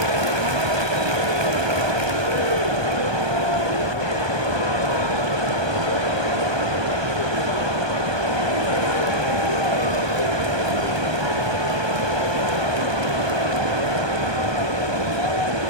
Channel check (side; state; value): left; late; 1.2 ms